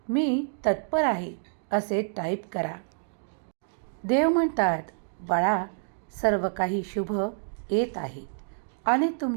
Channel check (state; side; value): silent; left; digital silence